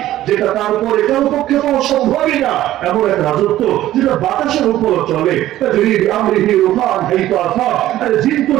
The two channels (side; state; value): left; quieter; 14.1 dB